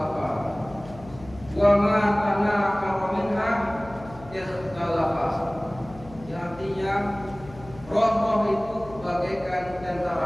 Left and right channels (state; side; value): noise; left; hum, 18 dB below the sound